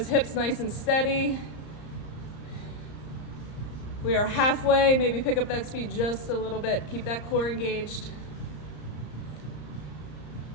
hips nice and steady. We are halfway. Maybe pick up that speed just a little bit. Keep that core engaged.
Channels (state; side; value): late; right; 34 ms